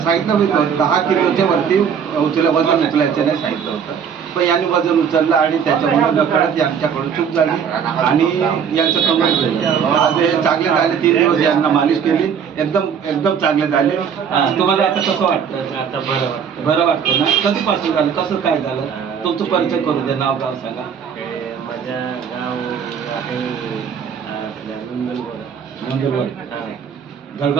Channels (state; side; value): quieter; left; 7.3 dB